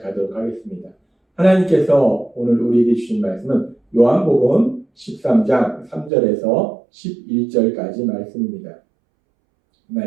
하겠습니다. 하나님께서 오늘 우리에게 주신 말씀은 요한복음 13장 3절에서 11절까지 말씀입니다. 이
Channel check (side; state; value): left; drops out; at 6.1 s